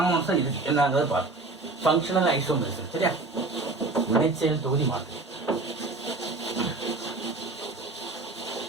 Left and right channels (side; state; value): left; quieter; 3.5 dB